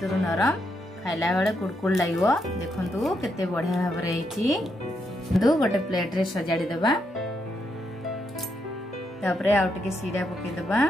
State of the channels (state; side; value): normal; both; correlation 0.79